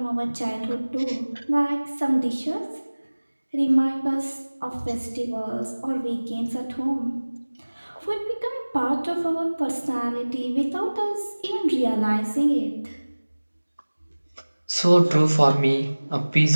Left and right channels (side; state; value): both; inverted; correlation -1.00